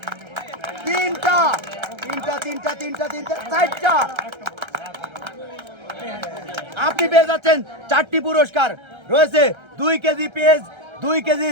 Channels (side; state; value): left; late; 1.3 ms